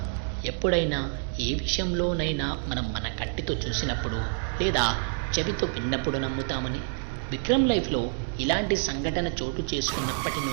ఎప్పుడైనా ఏ విషయంలోనైనా మనం మన కంటితో చూసినప్పుడు లేదా చెవితో విన్నప్పుడు నమ్ముతామని. విక్రమ్ లైఫ్లో ఇలాంటి సంఘటన చోటు చేసుకున్నప్పటి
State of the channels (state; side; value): silent; left; digital silence